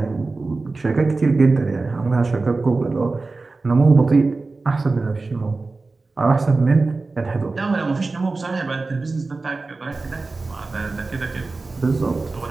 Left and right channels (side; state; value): left; quieter; 3.7 dB